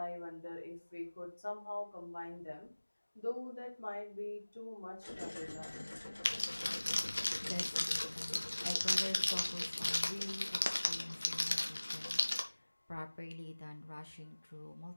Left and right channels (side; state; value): both; inverted; correlation -1.00